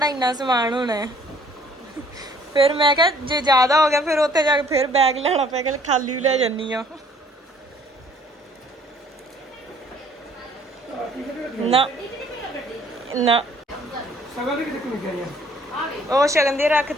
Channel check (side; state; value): both; normal; correlation 0.58